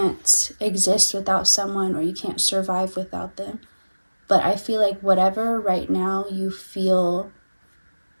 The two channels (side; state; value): both; inverted; correlation -1.00